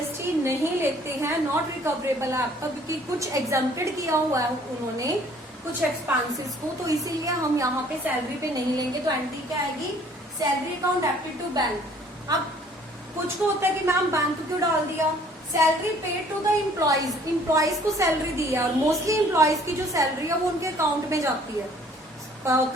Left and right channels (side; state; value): both; normal; correlation 0.57